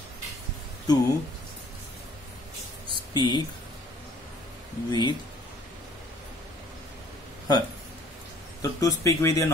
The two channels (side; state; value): both; normal; correlation 0.57